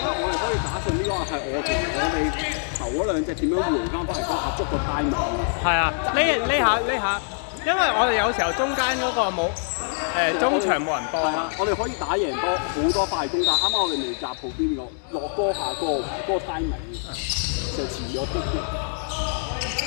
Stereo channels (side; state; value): right; silent; digital silence